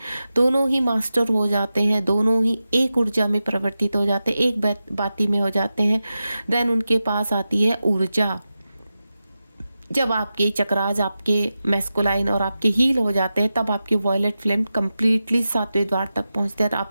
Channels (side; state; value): both; inverted; correlation -0.92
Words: ही मास्टर हो जाते हैं, दोनों ही एक ऊर्जा में परिवर्तित हो जाते हैं, एक बाती में हो जाते हैं। देन उनके पास आती है ऊर्जा। जब आपके चक्रास, आपके मैस्कुलाइन और आपके हील हो जाते हैं, तब आपकी वॉयलेट फ्लेम कंप्लीटली 7वें द्वार तक पहुंचते हैं,